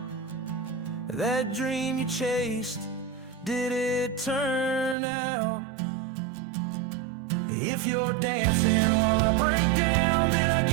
That dream you chased, did it turn out? If you're dancing while I break down, then I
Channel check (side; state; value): left; drops out; at 5.0 s